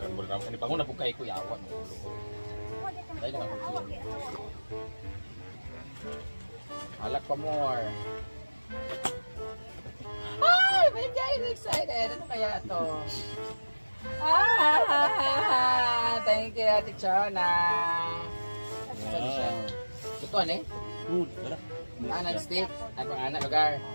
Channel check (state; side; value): inverted; both; correlation -1.00